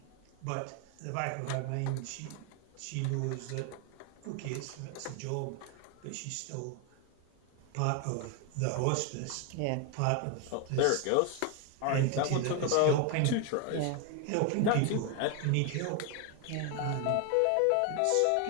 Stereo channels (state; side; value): different; both; correlation 0.01